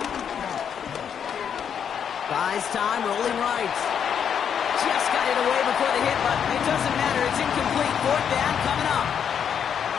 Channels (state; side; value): quieter; right; 8.0 dB